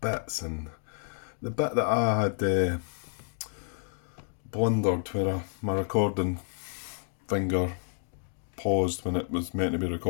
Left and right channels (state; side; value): silent; right; 58 dB below the other